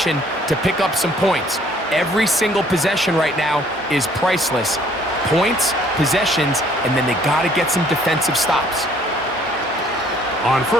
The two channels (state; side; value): normal; both; correlation 0.60